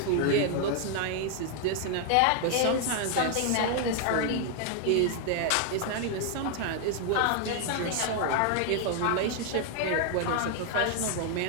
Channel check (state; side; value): different; both; correlation 0.00